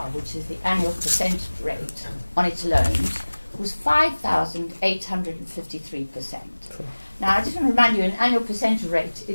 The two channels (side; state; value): both; inverted; correlation -1.00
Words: which is the annual percentage rate on its loans, was 5,853%. Now, I just want to remind you, an annual percentage rate